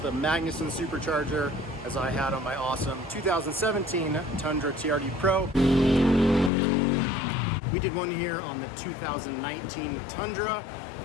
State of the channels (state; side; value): drops out; right; at 6.5 s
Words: Magnuson Supercharger, as I had on my awesome 2017 Tundra TRD Pro. We did one here on the 2019 Tundra.